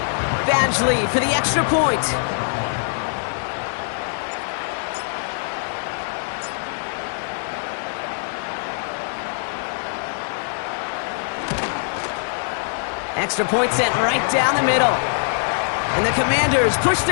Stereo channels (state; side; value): silent; right; 64 dB below the other